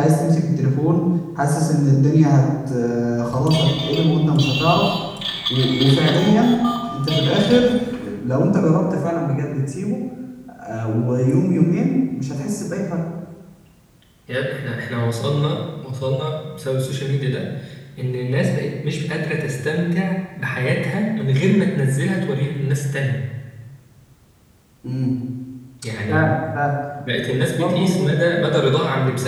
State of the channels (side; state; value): both; identical; correlation 1.00